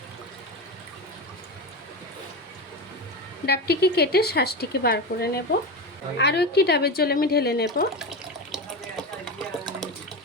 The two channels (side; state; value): both; normal; correlation 0.20